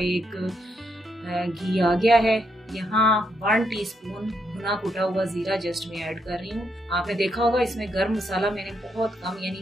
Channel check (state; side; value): normal; both; correlation 0.78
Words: घी आ गया है। यहाँ 1 टीस्पून भुना कुटा हुआ जीरा जस्ट मैं ऐड कर रही हूँ। आपने देखा होगा इसमें गर्म मसाला मैंने बहुत कम,